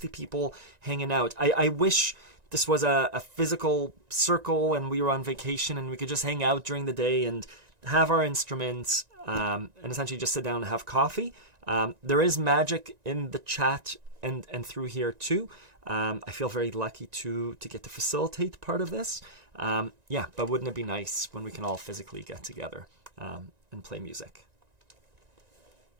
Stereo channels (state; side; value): late; left; 1.9 ms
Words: people hanging out. I wish this was a physical circle and we were on vacation and we could just hang out during the day and have our instruments and essentially just sit down and have coffee. There is magic in the chat and through here too. I feel very lucky to get to facilitate part of this. But wouldn't it be nice when we can all physically get together and play music?